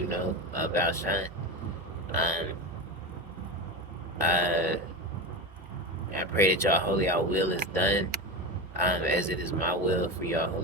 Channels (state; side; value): normal; both; correlation 0.22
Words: know about Shine. Um, uh, I pray that y'all holy, y'all will is done as it is my will for y'all